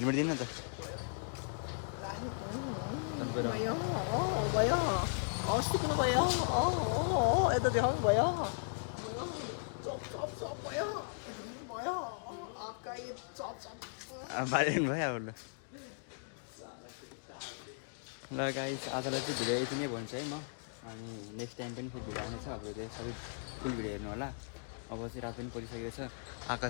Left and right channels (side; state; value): right; silent; digital silence